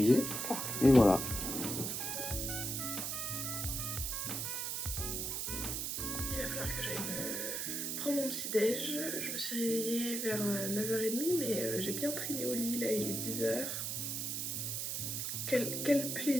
Et voilà. Il va falloir que j'aille me prendre mon petit déj. Je me suis réveillée vers 9h30 mais j'ai bien traîné au lit, là il est 10h. Quel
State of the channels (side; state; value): right; noise; hiss, 2 dB below the sound